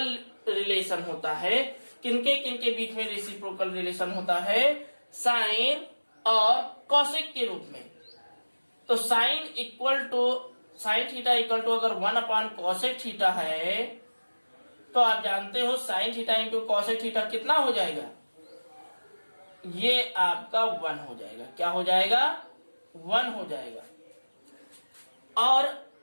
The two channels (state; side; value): inverted; both; correlation -1.00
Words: रिलेशन होता है, किनके किनके बीच में रेसिप्रोकल रिलेशन होता है, साइन और कॉसेक के रूप में। तो साइन थीटा इक्वल टू अगर 1 अपान कॉसेक थीटा है तो आप जानते हो sign theta into cosec theta कितना हो जाएगा, ये आपका 1 हो जाएगा। क्या हो जाएगा 1 हो जाएगा। और